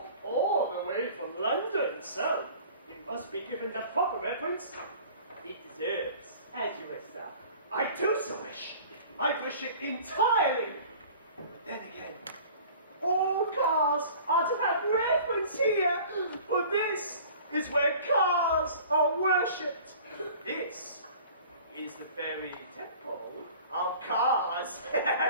all the way from London, so you must be given the proper reverence it deserves. As you wish, sir. I do so wish. I wish it entirely. But then again, all cars are to have reverence here, for this is where cars are worshipped. This is the very temple of cars.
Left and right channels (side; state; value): both; inverted; correlation -0.45